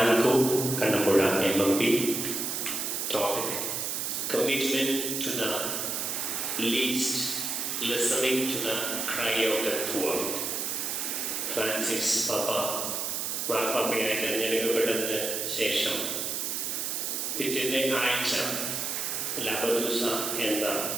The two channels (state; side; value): noise; right; hiss, 1 dB below the sound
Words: Kannampuzha MMP. Topic: Commitment to the least, listening to the cry of the poor. Francis പാപ്പ മാർപ്പാപ്പയായി തിരഞ്ഞെടുക്കപ്പെട്ടതിന് ശേഷം പിറ്റേ ആഴ്ച ലബദൂസ എന്ന